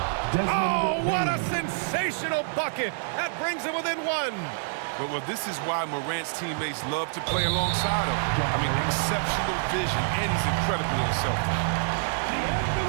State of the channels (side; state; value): left; silent; digital silence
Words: Oh, what a sensational bucket! That brings him within 1. Well, this is why Morant's teammates love to play alongside him. I mean, exceptional vision, and he's incredibly unselfish.